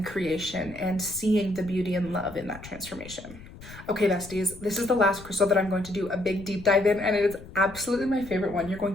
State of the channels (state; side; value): noise; left; rumble, 17 dB below the sound